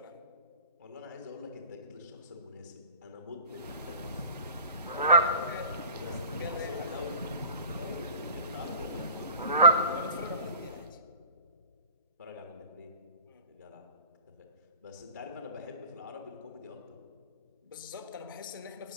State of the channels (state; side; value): inverted; both; correlation -0.43